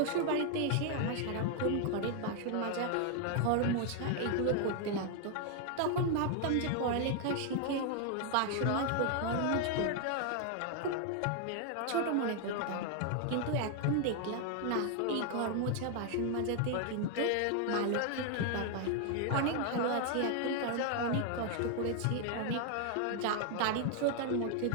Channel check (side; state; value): both; different; correlation 0.00